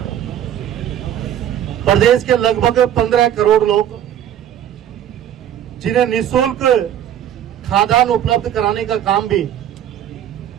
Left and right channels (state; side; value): quieter; left; 10.5 dB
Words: प्रदेश के लगभग 15 करोड़ लोग जिन्हें निःशुल्क खाद्यान्न उपलब्ध कराने का काम भी